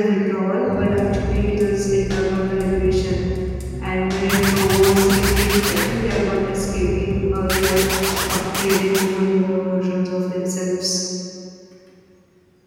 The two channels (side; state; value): both; identical; correlation 1.00